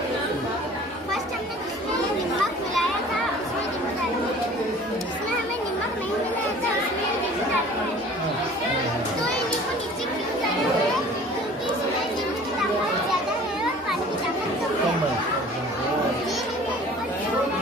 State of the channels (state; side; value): normal; both; correlation 0.47